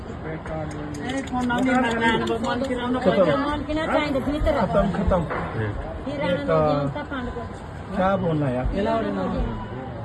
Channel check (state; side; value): identical; both; correlation 1.00